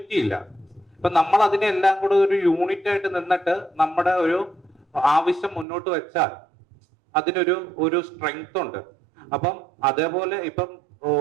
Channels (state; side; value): drops out; left; at 5.7 s